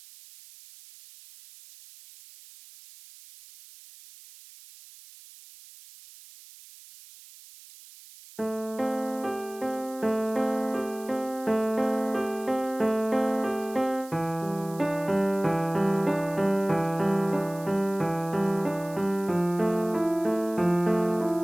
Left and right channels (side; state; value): right; noise; hiss, 20 dB below the sound